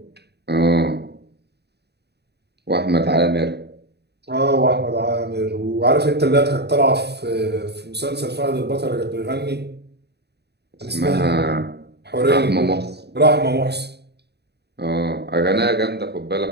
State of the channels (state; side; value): late; left; 0.48 ms